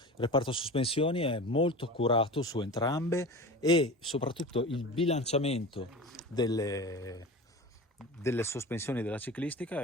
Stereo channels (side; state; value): both; normal; correlation 0.32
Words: reparto sospensioni è molto curato su entrambe e soprattutto il bilanciamento delle sospensioni della ciclistica